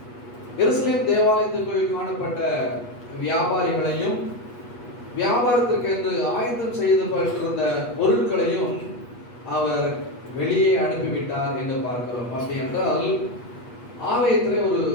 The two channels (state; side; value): late; right; 8.3 ms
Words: எருசலேம் தேவாலயத்துக்குள் காணப்பட்ட வியாபாரிகளையும் வியாபாரத்திற்கு என்று ஆயத்தம் செய்யப்பட்டிருந்த பொருட்களையும் அவர் வெளியே அனுப்பிவிட்டார் என்று பார்க்கிறோம். அப்படி என்றால் ஆலயத்திலே ஒரு